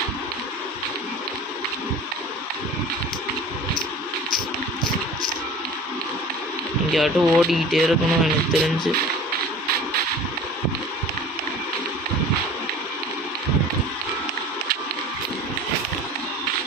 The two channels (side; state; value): both; normal; correlation 0.41